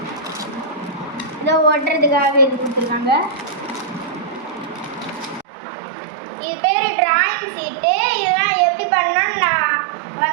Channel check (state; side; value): drops out; left; at 5.5 s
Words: இதை ஓட்டுறதுக்காக இது கொடுத்துருக்காங்க. இது பேர் டிராயிங் சீட்டு. இதெல்லாம் எப்படி பண்ணணும்னு நான்